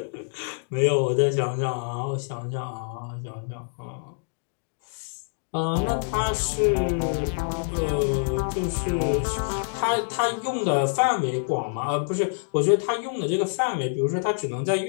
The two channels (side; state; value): right; silent; digital silence